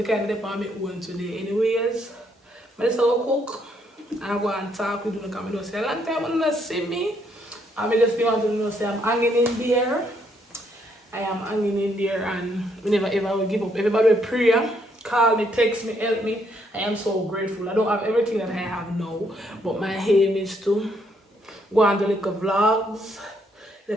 kind of depend on me own today. Anyways, I just cook and go and talk with you because I don't see a long time and you not see me. I just want to know say I'm hanging in there. I am hanging in there and we never ever will give up. Everybody will pray, call me, text me, help me. I am so grateful. I don't have everything that I have now, but my aim is to go and do little vlogs,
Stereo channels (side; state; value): both; normal; correlation 0.72